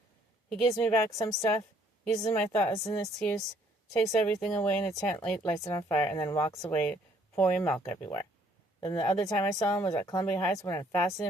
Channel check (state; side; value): normal; both; correlation 0.64